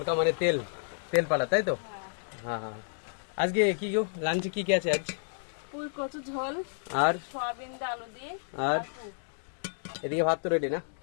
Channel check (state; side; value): silent; right; digital silence